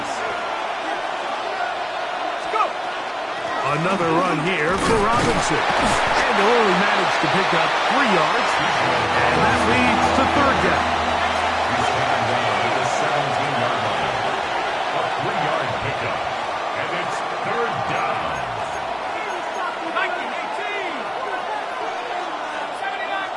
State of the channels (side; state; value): both; identical; correlation 1.00